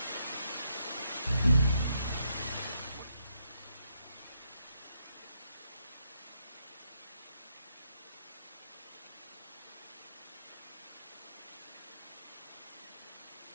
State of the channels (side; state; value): both; inverted; correlation -0.79